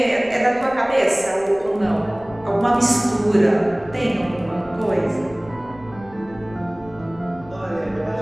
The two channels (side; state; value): left; noise; rumble, 21 dB below the sound